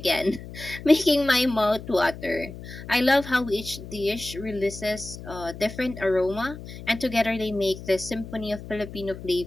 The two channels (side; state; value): left; noise; hum, 13 dB below the sound